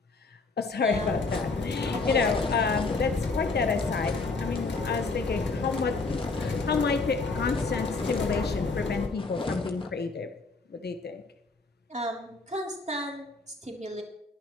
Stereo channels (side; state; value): right; quieter; 3.8 dB